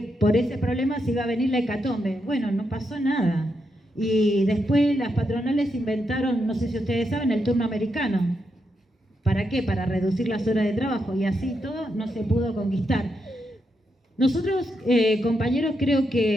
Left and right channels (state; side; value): normal; both; correlation 0.83